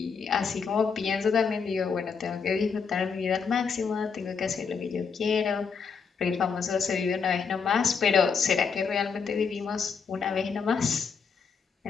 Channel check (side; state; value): right; quieter; 5.8 dB